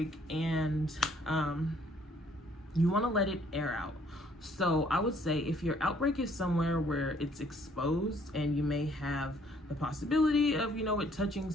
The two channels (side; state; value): both; normal; correlation 0.63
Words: and you want to let it air out. So I would say if your outbreak is somewhere where it's exposed and you may have the possibility of, you know, it touching